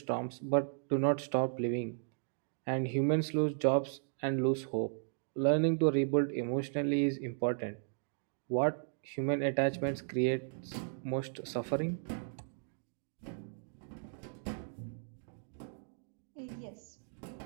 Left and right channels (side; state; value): left; silent; digital silence